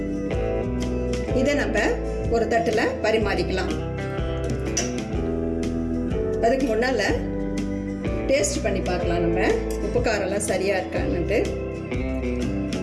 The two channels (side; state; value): both; identical; correlation 1.00